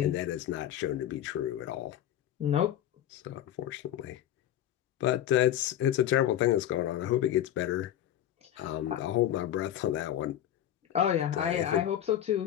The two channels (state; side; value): quieter; right; 11.4 dB